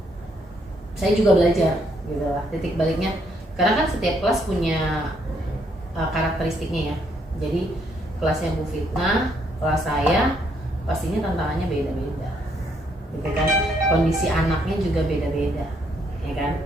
saya juga belajar gitu lah. Titik baliknya karena kan setiap kelas punya karakteristiknya ya. Jadi kelasnya Bu Fitnah, kelas saya pastinya tantangannya beda-beda. Gitu kan. Kondisi anaknya juga beda-beda, ya kan?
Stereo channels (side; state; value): both; normal; correlation 0.72